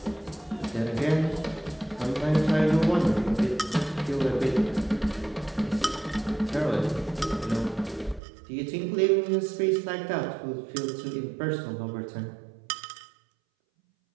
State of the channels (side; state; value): left; drops out; at 8.2 s